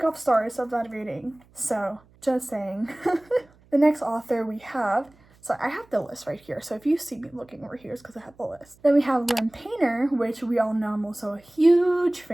off stars of that reading. So, just saying. The next author we have, so I have the list right here. So if you see me looking over here, it's because I have the list. Then we have LYNN Painter, which we all know I'm also a huge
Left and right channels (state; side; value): noise; right; hum, 29 dB below the sound